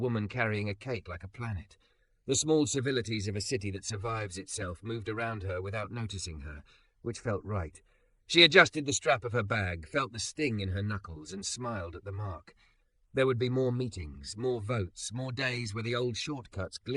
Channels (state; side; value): identical; both; correlation 1.00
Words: carrying a cake like a planet. The small civilities of a city that survives itself moved around her without noticing her, which felt right. She adjusted the strap of her bag, felt the sting in her knuckles, and smiled at the mark. There would be more meetings, more votes, more days where the old shortcuts